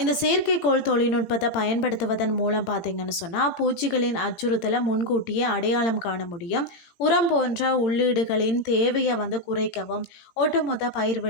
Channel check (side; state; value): right; late; 18 ms